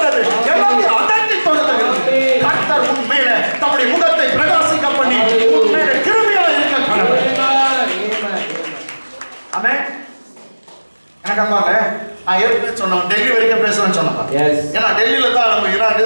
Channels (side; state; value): both; inverted; correlation -1.00